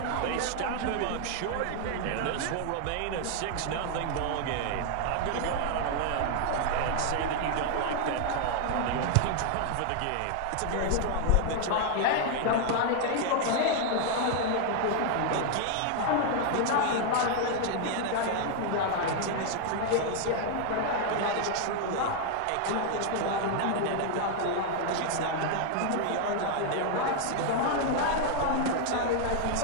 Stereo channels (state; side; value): different; both; correlation 0.00